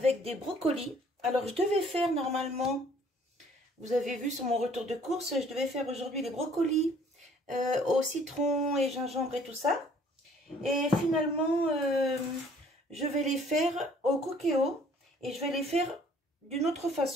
des brocolis. Alors, je devais faire normalement, vous avez vu sur mon retour de course, je devais faire aujourd'hui les brocolis au citron et gingembre et tout ça. Et finalement, je vais les faire au cookéo et je vais les faire d'une autre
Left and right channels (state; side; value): normal; both; correlation 0.58